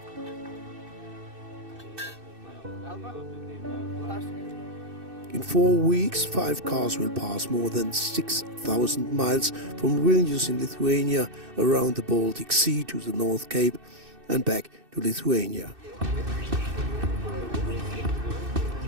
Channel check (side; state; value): left; late; 2.6 ms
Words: In 4 weeks, 5 cars will pass more than 6,000 miles from Vilnius in Lithuania around the Baltic Sea to the Northcape and back to Lithuania.